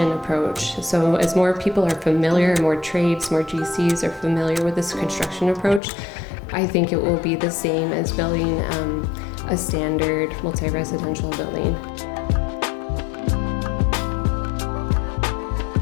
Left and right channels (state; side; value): drops out; right; at 5.8 s